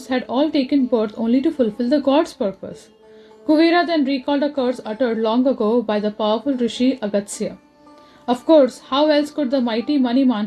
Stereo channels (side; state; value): both; identical; correlation 1.00